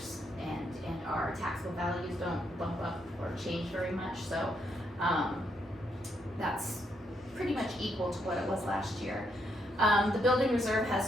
and our taxable values don't bump up or change very much. So that's pretty much equal to what it was last year. The building reserve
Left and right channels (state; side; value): normal; both; correlation 0.77